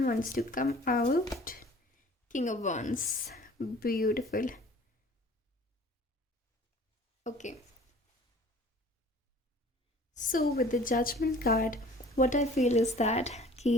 wants to come out, king of wands, beautiful. Okay, so with the judgement card what I feel is that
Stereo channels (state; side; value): normal; both; correlation 0.49